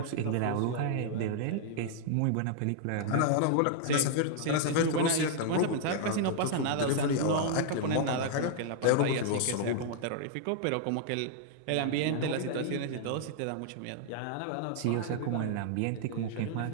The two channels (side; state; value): both; different; correlation -0.01